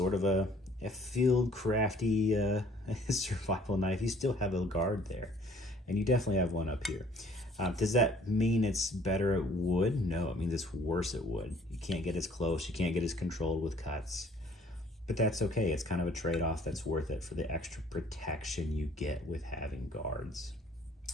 of a field crafty survival knife, you still have a guard there, and you definitely have one up here. Does that mean it's better at wood? No, it means it's worse at wood. You can't get as close, you can't get as controlled with cuts. But that's okay. It's kind of a trade-off that's worth it for the extra protection you get with having guards.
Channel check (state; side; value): normal; both; correlation 0.57